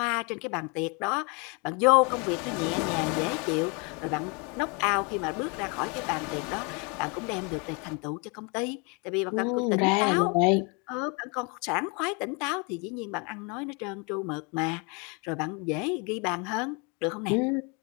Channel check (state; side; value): quieter; right; 32.2 dB